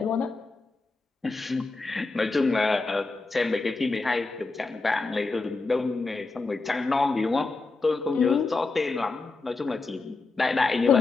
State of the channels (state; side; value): quieter; right; 3.7 dB